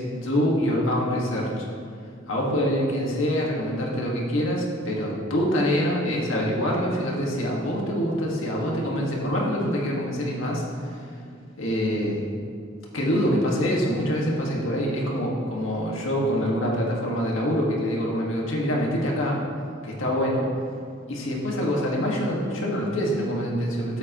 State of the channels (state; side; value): normal; both; correlation 0.52